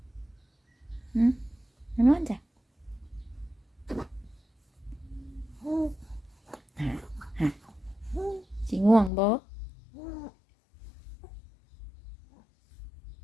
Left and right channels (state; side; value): drops out; right; at 9.1 s